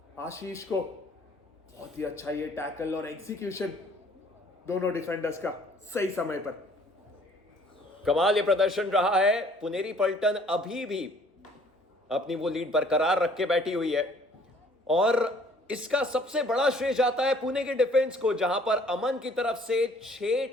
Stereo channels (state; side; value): normal; both; correlation 0.58